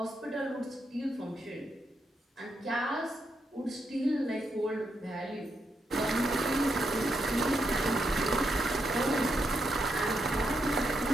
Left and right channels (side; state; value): both; normal; correlation 0.81